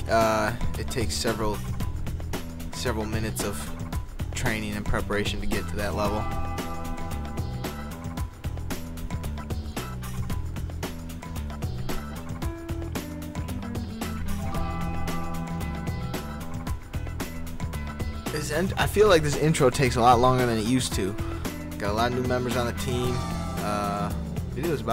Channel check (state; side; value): identical; both; correlation 1.00